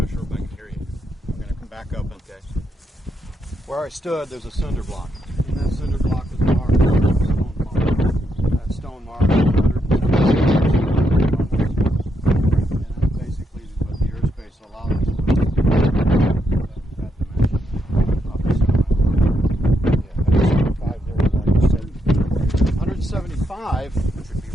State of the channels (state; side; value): normal; both; correlation 0.80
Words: sure if I can hear you. I'm going to come back up. Okay. Where I stood, there's a cinder block. And that cinder block was marked with a stone mark. That stone mark is 100. And that basically is what the airspace allows us to do. That dimension of the center line. Yeah, 175 there, like you said. 175, Which would be